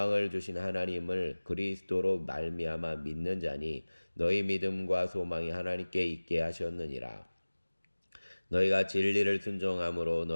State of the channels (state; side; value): inverted; both; correlation -1.00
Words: 주신 하나님을 그리스도로 말미암아 믿는 자니 너희 믿음과 소망이 하나님께 있게 하셨느니라. 너희가 진리를 순종함으로